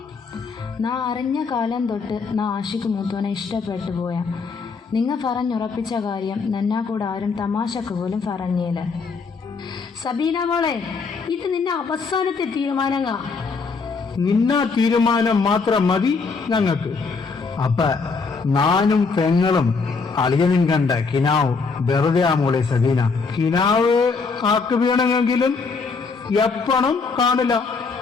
നാ അറിഞ്ഞ കാലം തൊട്ട് നാ ആഷിക്ക് മൂത്തോനെ ഇഷ്ടപ്പെട്ടു പോയ. നിങ്ങ പറഞ്ഞുറപ്പിച്ച കാര്യം നന്നാ കൂടെ ആരും തമാശക്ക് പോലും പറഞ്ഞേല. സബീന മോളെ, ഇത് നിന്റെ അവസാനത്തെ തീരുമാനങ്ങ. നിന്നാ തീരുമാനം മാത്രം മതി ഞങ്ങൾക്ക്. അപ്പ നാനും പെങ്ങളും അളിയനും കണ്ട കിനാവ് വെറുതെ ആ മോളെ സബീന. കിനാവ് ആക്ക് വീണമെങ്കിലും എപ്പണം കാണില്ല.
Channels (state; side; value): quieter; right; 4.7 dB